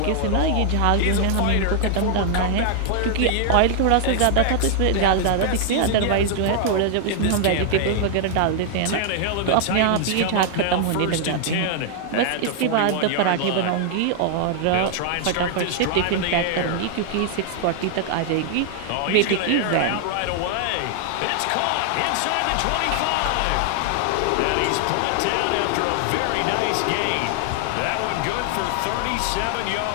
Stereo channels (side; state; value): both; different; correlation 0.00